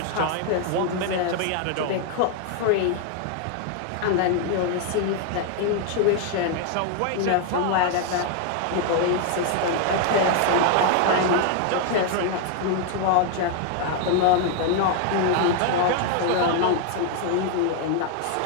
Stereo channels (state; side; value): different; both; correlation 0.00